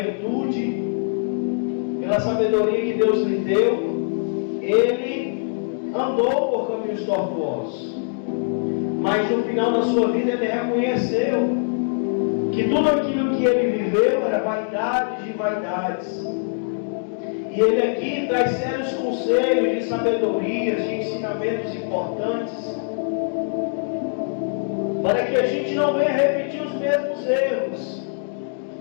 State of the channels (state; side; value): silent; right; digital silence